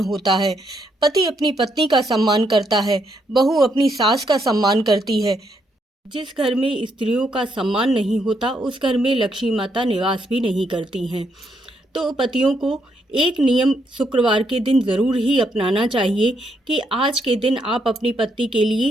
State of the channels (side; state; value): both; normal; correlation 0.76